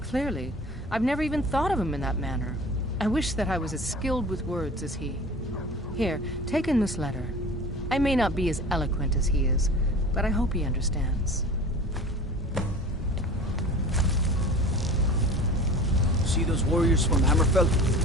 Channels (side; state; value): both; normal; correlation 0.40